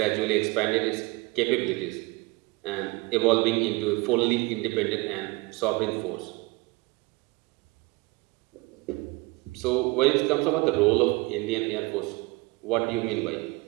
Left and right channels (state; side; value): quieter; left; 23.9 dB